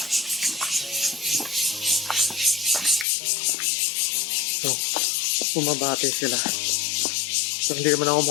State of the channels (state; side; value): drops out; right; at 3.1 s